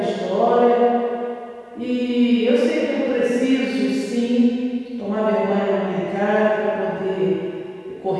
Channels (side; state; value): both; identical; correlation 1.00